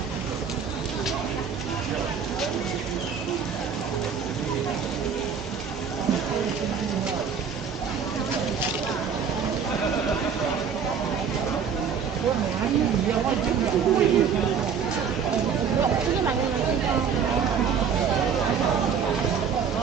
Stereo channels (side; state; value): left; quieter; 6.7 dB